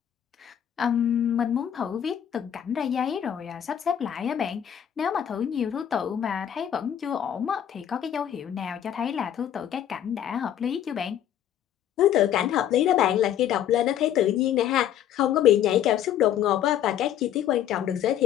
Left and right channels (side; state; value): right; quieter; 10.3 dB